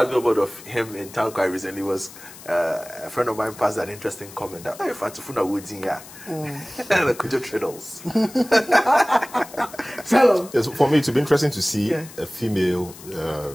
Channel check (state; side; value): noise; left; hiss, 18 dB below the sound